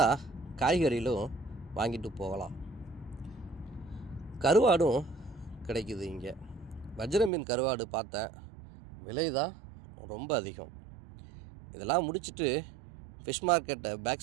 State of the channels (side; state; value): left; drops out; at 7.3 s